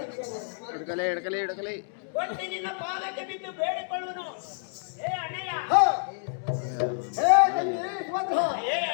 ಹಿಡ್ಕಲಿ ಕೊಟ್ಟು ನಿನ್ನ ಪಾದಕ್ಕೆ ಬಿದ್ದು ಬೇಡಿಕೊಳ್ಳುವನು. ಹೇ ಅಣ್ಣಯ್ಯ. ಹ. ಹೇ ತಂಗಿ ಸುಭದ್ರ, ಹೇ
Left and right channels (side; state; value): right; silent; digital silence